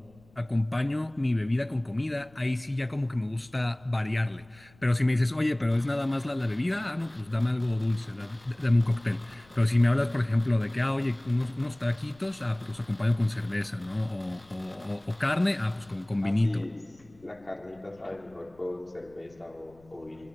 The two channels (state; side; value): noise; left; rumble, 28 dB below the sound